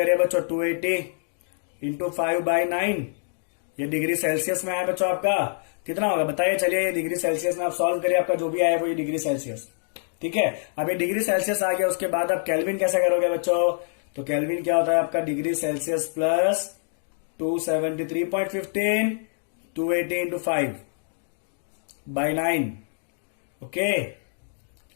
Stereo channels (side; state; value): right; silent; digital silence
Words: बच्चों, 280 इंटू 5/9, ये डिग्री सेल्सियस में आया बच्चों आपका, कितना होगा बताइए। चलिए ये डिग्री सेल्सियस में आप सॉल्व करिए, आपका जो भी आया वो ये डिग्री सेल्सियस। ठीक है, अब ये डिग्री सेल्सियस आ गया, उसके बाद आप केल्विन कैसे करोगे बच्चों, तो केल्विन क्या होता है आपका degree Celsius plus 273.15, 280 into 5 by 9, okay.